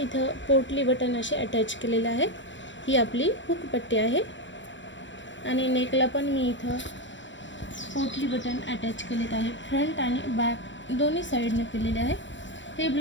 पोटली बटन असे अटॅच केलेले आहेत। ही आपली हुक पट्टी आहे आणि नेकला पण मी इथं पोटली बटन अटॅच केलेत आहे. फ्रंट आणि बॅक दोन्ही साईडने केलेले आहे. हे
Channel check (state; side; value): late; right; 0.54 ms